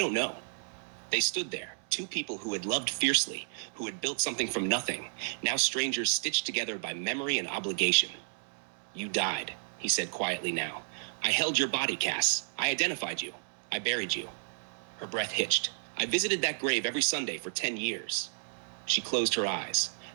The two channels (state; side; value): silent; left; 56 dB below the other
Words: know." They stood there, 2 people who had loved fiercely, who had built something from nothing, now strangers stitched together by memory and obligation. "You died," he said quietly now. "I held your body, Cass. I identified you. I buried you." Her breath hitched. "I visited that grave every Sunday for 10 years. She closed her eyes.